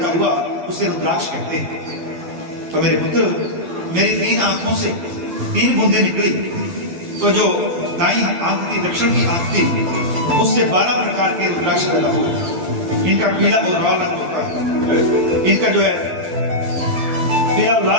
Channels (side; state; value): left; late; 11 ms